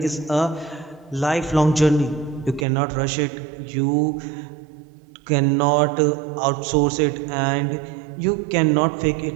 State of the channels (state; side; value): drops out; left; at 2.7 s